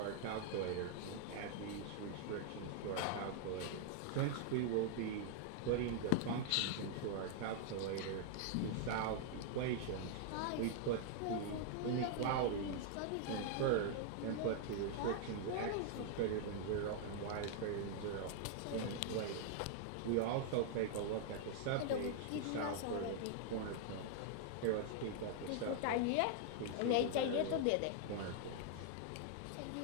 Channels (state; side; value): different; both; correlation -0.01